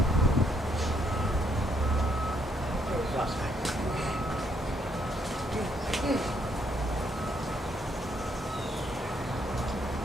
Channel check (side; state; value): both; normal; correlation 0.72